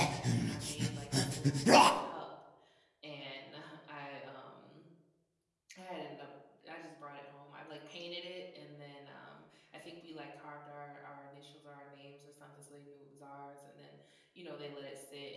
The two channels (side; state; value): both; identical; correlation 1.00